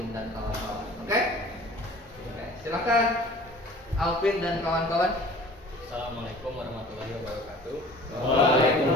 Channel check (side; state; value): both; normal; correlation 0.46